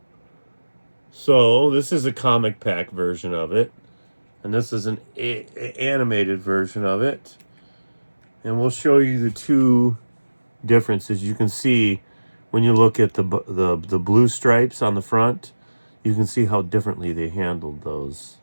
So, this is a comic pack version of it. And this is an animated version of it. And we'll show you the two differences. You can see when you look at the blue stripes on the front, you can see how differently they handled those.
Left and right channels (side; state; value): both; inverted; correlation -1.00